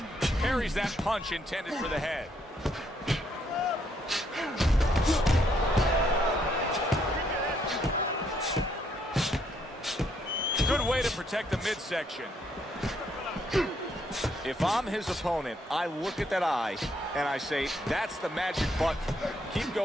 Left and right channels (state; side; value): normal; both; correlation 0.72